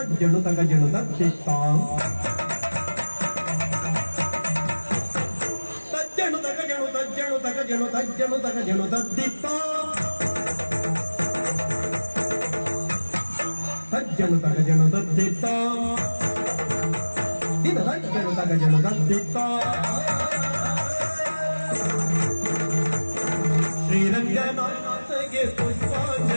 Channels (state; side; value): inverted; both; correlation -1.00